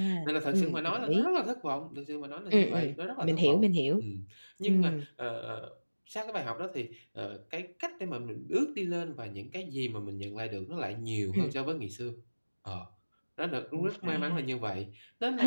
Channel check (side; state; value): both; inverted; correlation -1.00